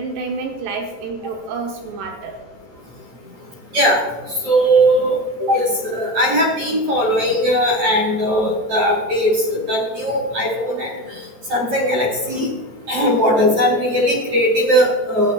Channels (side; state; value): left; late; 14 ms